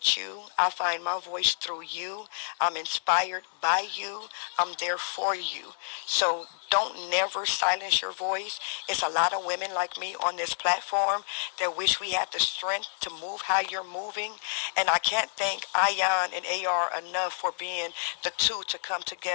you. I find my voice through you. I'm inspired by you. I'm there for you. So don't never silence your voice. It's a lot of women like me on this platform that wish we had the strength to move how you're moving. And I can't thank Aayan and AR enough for being the two to come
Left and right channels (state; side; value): silent; right; 59 dB below the other